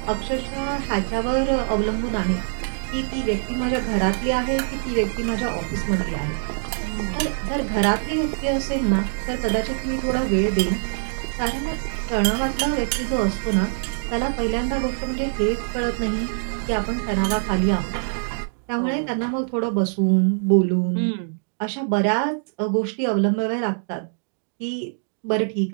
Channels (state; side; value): silent; left; digital silence